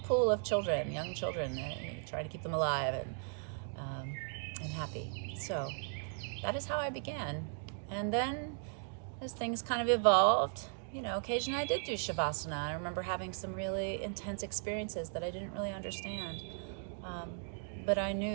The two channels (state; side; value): silent; left; 53 dB below the other